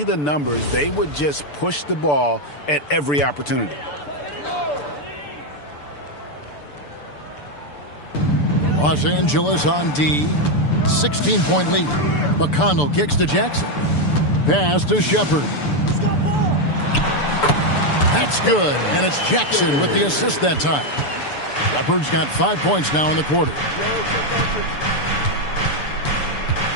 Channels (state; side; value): late; right; 6.9 ms